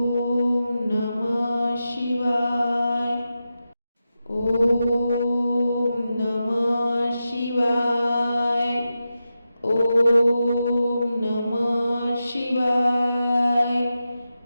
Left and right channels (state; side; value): inverted; both; correlation -0.90